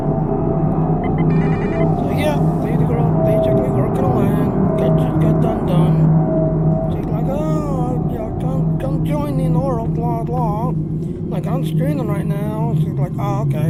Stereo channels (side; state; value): both; identical; correlation 1.00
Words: So yeah, lady girl basically working on land. Just got done. She's like, oh, yeah, come join me in oral, blah, blah. Like, I'm streaming right now. She's like, oh,